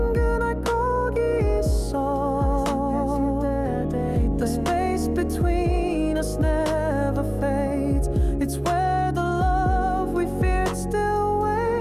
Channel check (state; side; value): identical; both; correlation 1.00